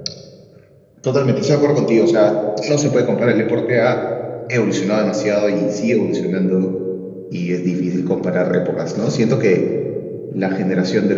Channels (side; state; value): both; identical; correlation 1.00